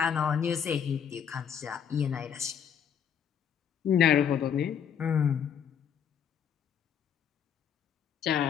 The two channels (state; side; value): quieter; right; 8.2 dB